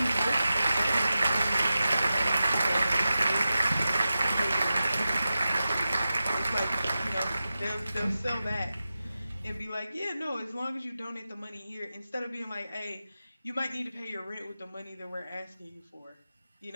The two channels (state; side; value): inverted; both; correlation -0.93